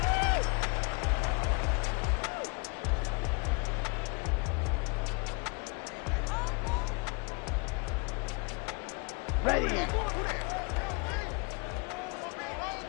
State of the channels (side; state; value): right; quieter; 31.7 dB